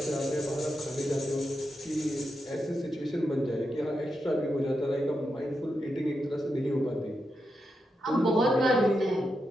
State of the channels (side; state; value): both; normal; correlation 0.86